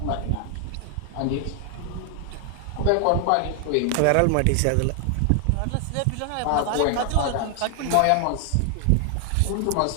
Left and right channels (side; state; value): both; different; correlation 0.00